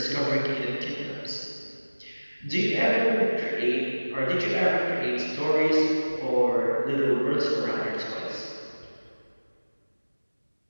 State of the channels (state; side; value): inverted; both; correlation -1.00